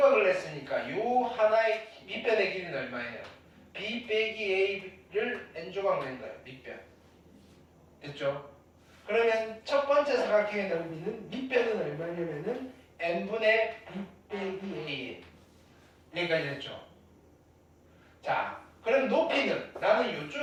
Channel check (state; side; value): identical; both; correlation 1.00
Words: 냈으니까 요 하나의 밑변의 길이는 얼마예요? B 빼기 A를 n조각 낸 거예요. 밑변. 됐죠? 그러면 첫 번째 사각형의 넓이는 밑변은 얼마냐면은 n분의 b 빼기 a 여기까지 됐죠. 자, 그럼 높이는 나는